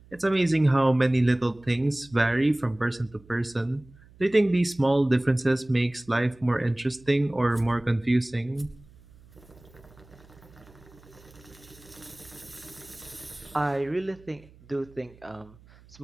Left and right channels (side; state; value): right; noise; hum, 25 dB below the sound